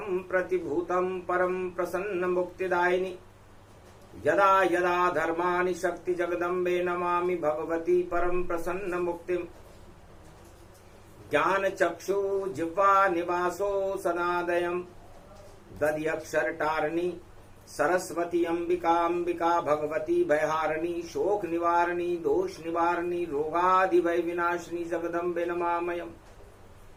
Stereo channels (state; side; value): identical; both; correlation 1.00